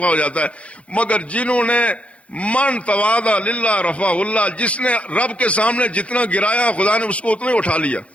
ہو جاتا ہے، مگر جنہوں نے من تواضع للہ رفع اللہ، جس نے رب کے سامنے جتنا گرایا خدا نے اس کو اتنا ہی اٹھا لیا۔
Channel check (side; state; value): right; late; 0.063 ms